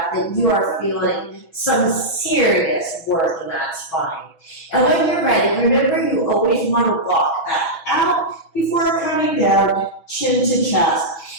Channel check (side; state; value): right; late; 6.1 ms